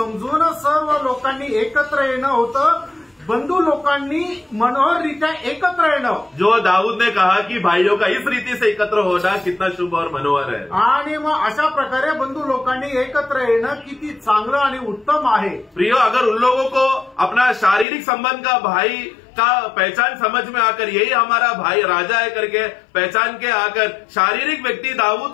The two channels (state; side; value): drops out; right; at 17.9 s